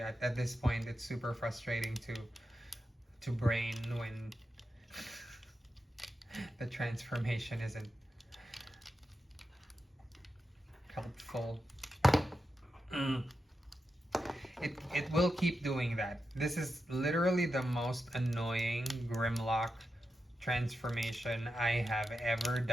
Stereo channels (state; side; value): normal; both; correlation 0.89